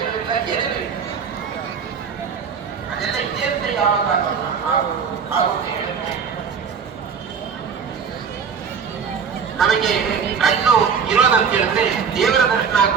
ಏನಿಲ್ಲ. ಅದೆಲ್ಲ ಇದೆ ಅಂತ ಯಾವಾಗ ಆಗುತ್ತೆ ಹೇಳುತ್ತೆ. ನಮಗೆ ಕಣ್ಣು ಇರೋದಂತ ಹೇಳಿದ್ರೆ ದೇವರ ದರ್ಶನ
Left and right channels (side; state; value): left; quieter; 6.4 dB